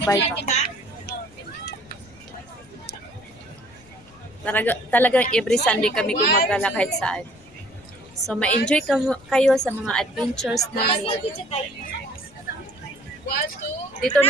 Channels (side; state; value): left; noise; rumble, 26 dB below the sound